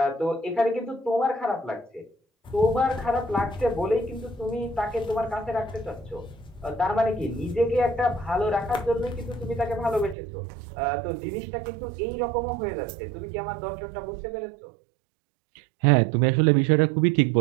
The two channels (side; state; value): left; drops out; at 10.2 s